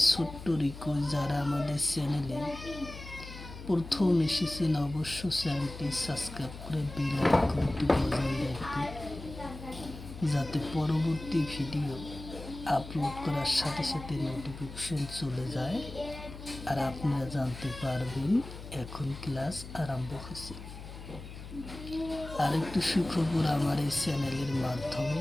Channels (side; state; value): left; noise; hum, 12 dB below the sound